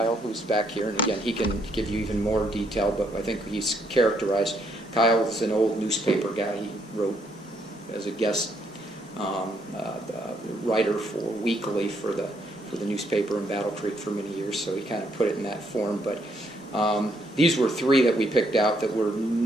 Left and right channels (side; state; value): both; normal; correlation 0.72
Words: who's back here, and again, he can give you even more detail, but I think he's characterized. Kyle is an old newspaper guy. He wrote as a guest writer for Weekly for the newspaper in Battle Creek for many years, so he kind of put it in that form. But these were 3 that we picked out that were